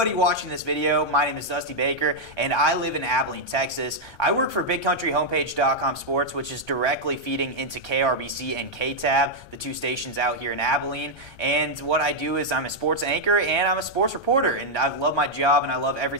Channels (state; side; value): late; right; 1.3 ms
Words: watching this video. My name is Dusty Baker and I live in Abilene, Texas. I work for BigCountryHomepage.com Sports, which is directly feeding into KRBC and KTAB, the two stations out here in Abilene. And what I do is I'm a sports anchor and I'm a sports reporter, and I love my job and I love